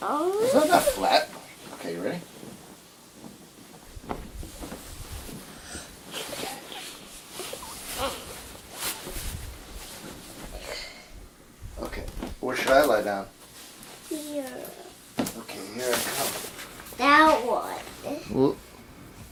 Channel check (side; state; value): both; identical; correlation 1.00